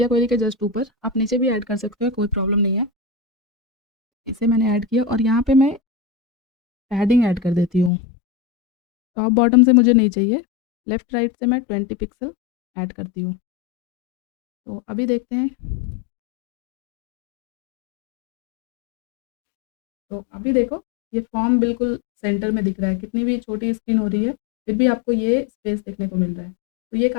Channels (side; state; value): right; drops out; at 7.9 s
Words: क्वेरी के जस्ट ऊपर, आप नीचे भी ऐड कर सकते हो, कोई प्रॉब्लम नहीं है। इसे मैंने ऐड किया और यहाँ पे मैं पैडिंग ऐड कर देती हूँ। टॉप बॉटम से मुझे नहीं चाहिए, लेफ़्ट राइट से मैं 20 पिक्सल ऐड करती हूँ। तो अभी देखते हैं, तो अभी देखो ये फॉर्म बिल्कुल सेंटर में दिख रहा है, कितनी भी छोटी स्क्रीन हो रही है फिर भी आपको ये स्पेस देखने को मिल रहा है। तो ये